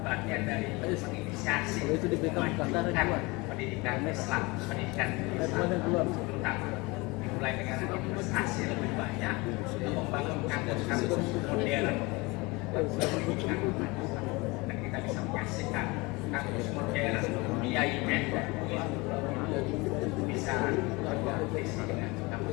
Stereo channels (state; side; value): quieter; right; 24.9 dB